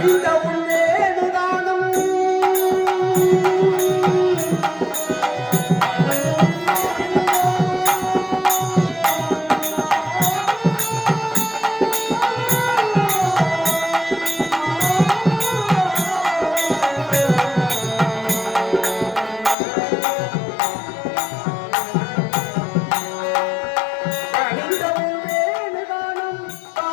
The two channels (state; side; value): drops out; right; at 19.6 s